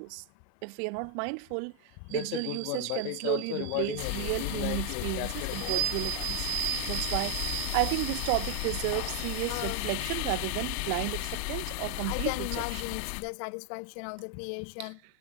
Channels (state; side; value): different; both; correlation 0.00